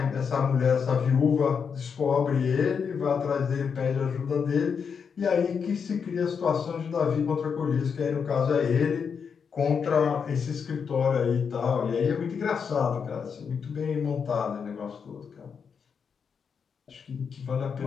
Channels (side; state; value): right; quieter; 6.4 dB